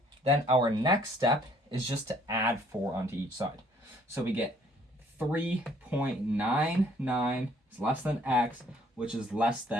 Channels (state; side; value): normal; both; correlation 0.60